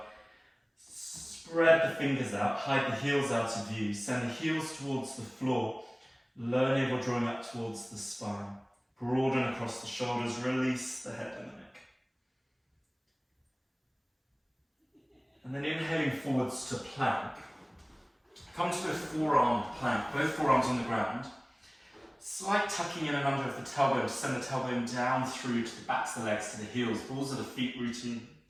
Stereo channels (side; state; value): both; identical; correlation 1.00